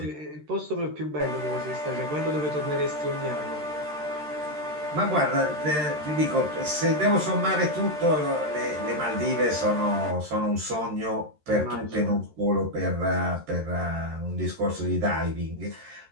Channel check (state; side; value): late; left; 13 ms